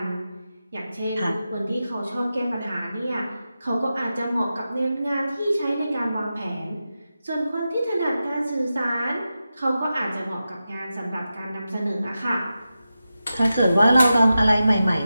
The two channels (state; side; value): inverted; both; correlation -0.92